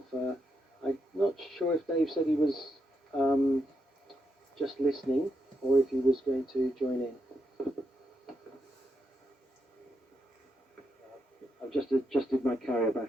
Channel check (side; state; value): both; normal; correlation 0.83